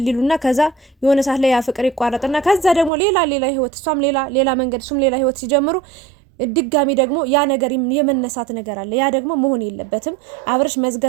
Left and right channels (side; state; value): left; drops out; at 2.9 s